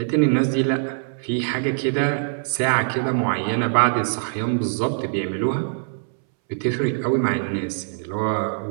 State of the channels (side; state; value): left; silent; 64 dB below the other